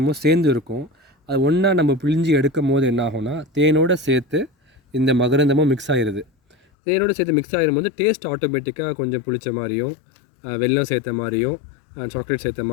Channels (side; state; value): right; drops out; at 6.6 s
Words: சேர்ந்து இருக்கும். அது ஒன்றா நம்ம பிழிஞ்சி எடுக்கும் போது என்ன ஆகும்னா, தேனோடு சேர்த்து இந்த மகரந்தமும் மிக்ஸ் ஆகிடுது. தேனோடு சேர்த்து மிக்ஸ் ஆகிடும்போது டேஸ்ட் ஆட்டோமேட்டிக்காக கொஞ்சம் புளிச்ச மாதிரியும், வெல்லம் சேர்த்த மாதிரியும், சாக்லேட் சேர்த்த